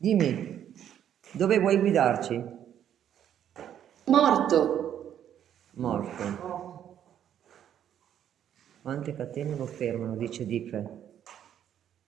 dove vuoi guidarci? Morto. Morto. Quante catene lo fermano, dice Dife.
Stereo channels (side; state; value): left; quieter; 10.0 dB